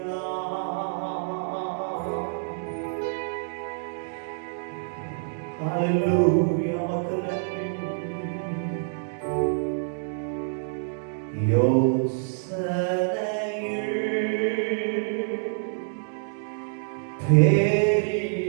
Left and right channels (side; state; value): left; silent; digital silence